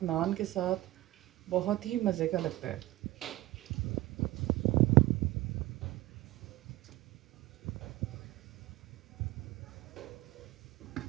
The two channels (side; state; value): left; quieter; 17.6 dB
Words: नान के साथ बहुत ही मज़े का लगता है।